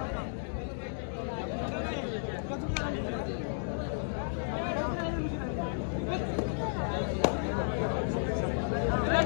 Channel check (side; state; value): right; silent; digital silence